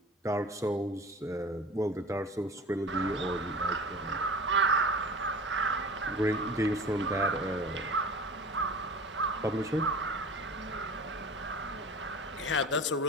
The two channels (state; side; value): normal; both; correlation 0.38